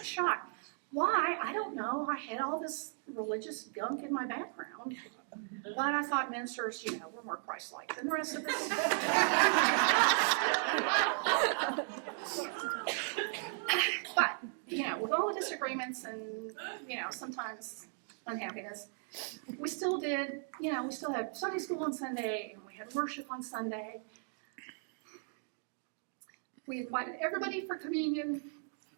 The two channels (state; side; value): silent; left; 54 dB below the other